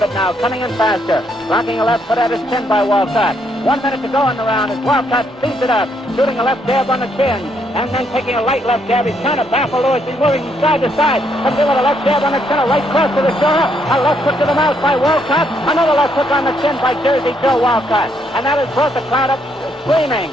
now, coming in faster. Blocking a left foot at his chin by Walcott. 1 minute to go in the round as Walcott speeds it up, shooting a left jab on the chin, and then taking a light left jab. He's trying to baffle Louis. He's moving from side to side. Comes in with a left jab on the chin, a right cross to the shoulder, a left hook to the mouth by Walcott, another left hook on the chin by Jersey Joe Walcott. And that has brought the crowd up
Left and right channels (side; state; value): both; normal; correlation 0.73